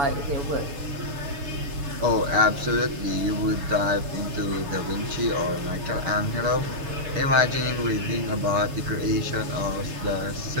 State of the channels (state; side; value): late; left; 7.0 ms